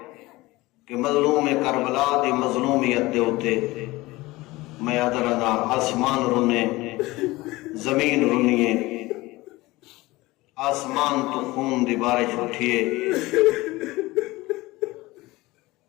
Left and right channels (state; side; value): quieter; right; 20.3 dB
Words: کہ مظلوم کربلا دی مظلومیت دے ہوتے میں ادرنا آسمان رونے زمین رونیے، آسمان تو خون دی بارش اٹھیے،